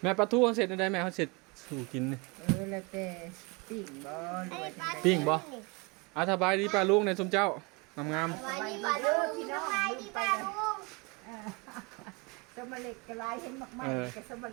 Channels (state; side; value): quieter; left; 28.8 dB